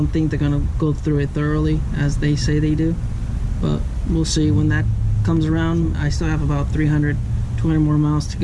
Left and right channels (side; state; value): both; identical; correlation 1.00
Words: think they're going to go through it thoroughly as they say they do, but we'll see when that comes around. I still have about 200 more miles to